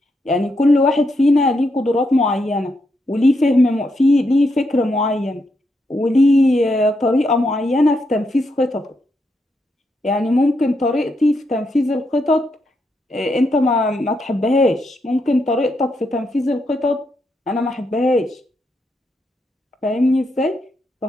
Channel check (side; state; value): both; normal; correlation 0.81